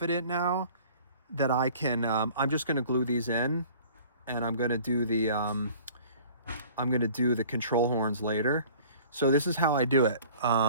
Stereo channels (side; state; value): both; inverted; correlation -0.49